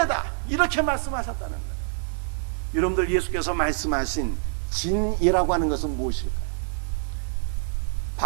이렇게 말씀하셨다는 거예요. 여러분들, 예수께서 말씀하신 진이라고 하는 것은 무엇일까요?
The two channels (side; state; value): left; silent; digital silence